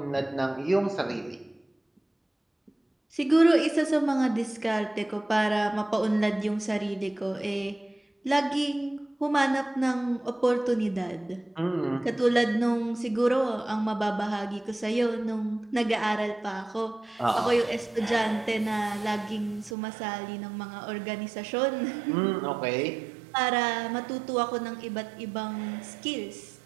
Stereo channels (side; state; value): left; drops out; at 19.8 s